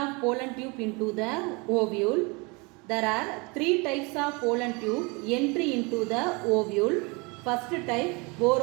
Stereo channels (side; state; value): left; quieter; 28.5 dB